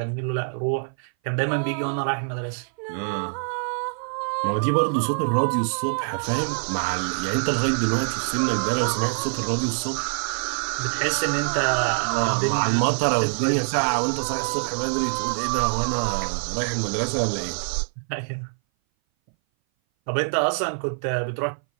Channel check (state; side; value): silent; left; 59 dB below the other